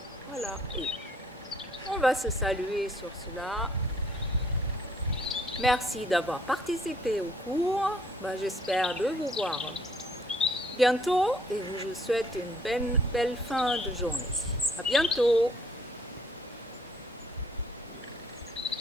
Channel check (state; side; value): normal; both; correlation 0.62